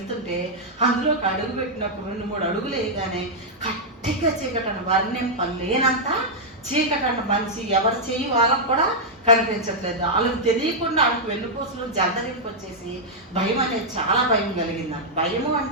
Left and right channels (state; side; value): normal; both; correlation -0.05